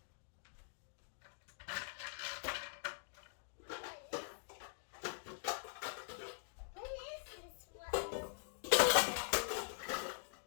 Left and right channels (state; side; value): silent; right; digital silence